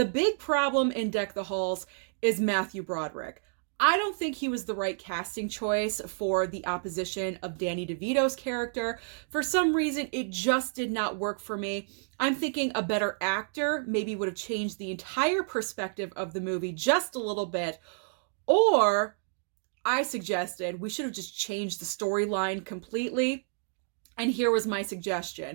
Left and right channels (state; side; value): silent; left; digital silence